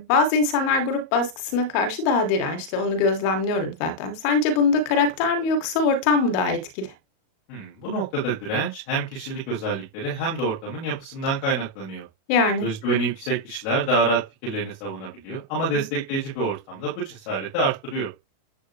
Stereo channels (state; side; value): late; right; 37 ms